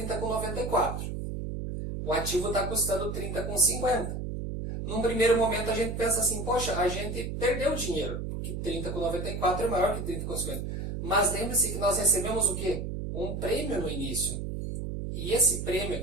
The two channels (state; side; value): noise; right; hum, 4 dB below the sound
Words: O ativo está custando 30,50. Num primeiro momento a gente pensa assim, poxa, a gente perdeu dinheiro, porque 30,94 é maior que 30,50. Mas lembre-se que nós recebemos o quê? Um prêmio no início. E esse prêmio